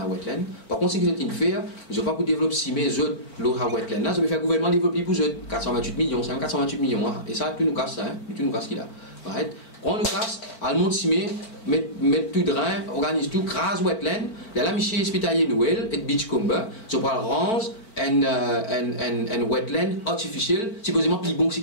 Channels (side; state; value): right; late; 4.4 ms